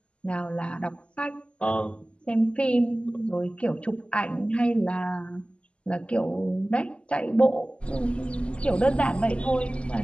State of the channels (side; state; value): right; late; 0.055 ms